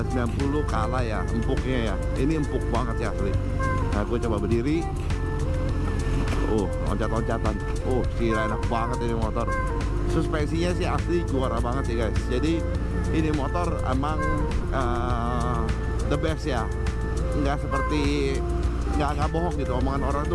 kalah ya empuknya ya. Ini empuk banget sih asli. Nah gue coba berdiri. Loncat-loncatan. Gila enak banget ini motor. Suspensinya sih asli juara banget sih guys. Jadi ini motor emang the best ya, nggak seperti nggak bohong gitu, omongan orang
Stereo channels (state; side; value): identical; both; correlation 1.00